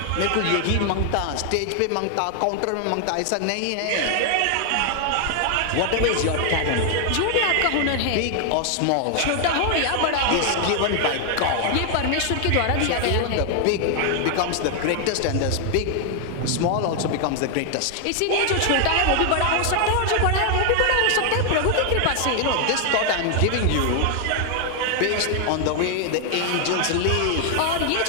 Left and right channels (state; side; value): different; both; correlation 0.00